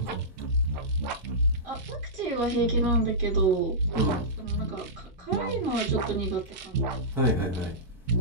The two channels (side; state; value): both; normal; correlation -0.15